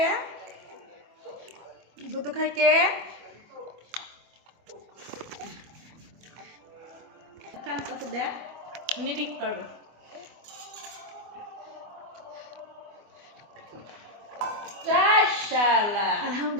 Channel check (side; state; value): left; late; 24 ms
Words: দুধু খায় কে? কান পাশে দেখ, নিরিক করো।